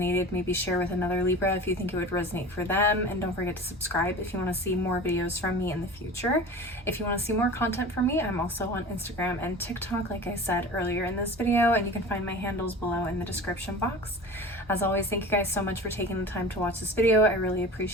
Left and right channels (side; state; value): both; normal; correlation 0.36